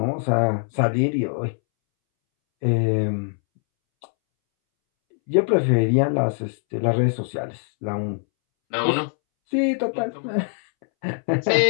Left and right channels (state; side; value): silent; right; 64 dB below the other